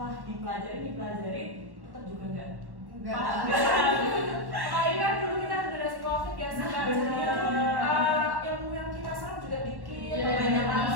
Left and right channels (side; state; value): left; late; 1.1 ms